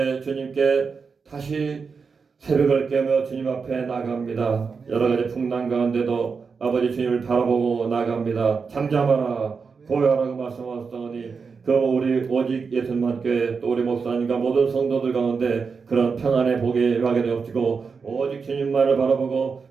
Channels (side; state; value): left; quieter; 5.3 dB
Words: 주님께 다시 새벽을 깨며 주님 앞에 나갑니다. 여러 가지 풍랑 가운데도 아버지 주님을 바라보고 나갑니다. 잠잠하라 고요하라고 말씀하셨더니 그 우리 오직 예수님만 교회 또 우리 목사님과 모든 성도들 가운데 그런 평안의 복이 임하게 되옵시고 오직 주님만을 바라보고